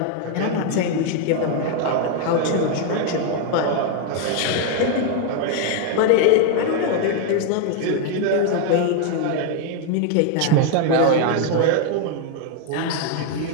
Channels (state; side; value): different; both; correlation 0.00